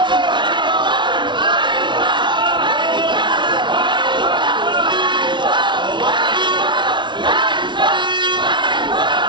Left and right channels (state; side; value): late; left; 0.23 ms